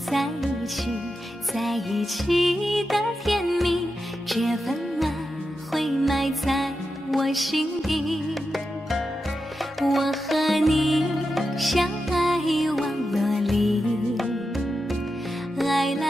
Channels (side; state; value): both; normal; correlation 0.89